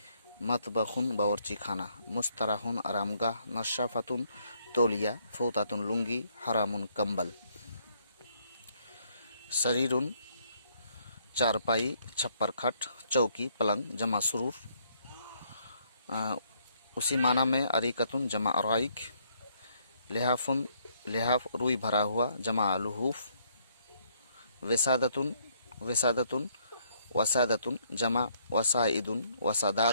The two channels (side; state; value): both; inverted; correlation -0.69